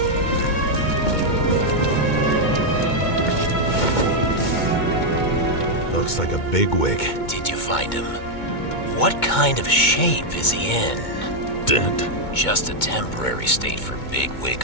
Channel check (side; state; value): right; late; 2.2 ms